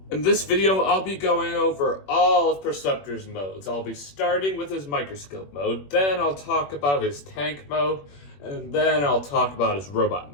In this video, I'll be going over all of Preceptor's modes. I'll be starting with his microscope mode, then I'll talk about his tank mode, and then I'll talk about his robot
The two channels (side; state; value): right; late; 21 ms